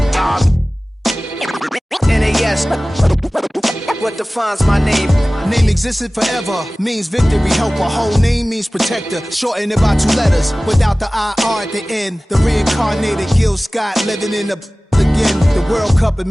NAS. What defines my name? Name existed forever, means victory, helper. Whole name means protector, shorten it by 2 letters, without the IR at the end. The reincarnated Gil Scott living in the again. The World Cup in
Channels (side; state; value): both; normal; correlation 0.98